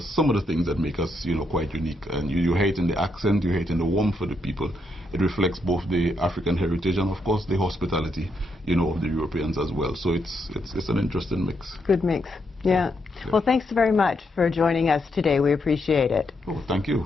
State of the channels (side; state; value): both; normal; correlation 0.79